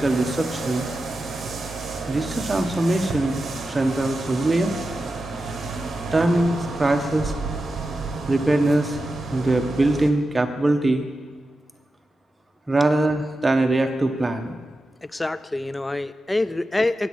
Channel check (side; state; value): both; normal; correlation 0.91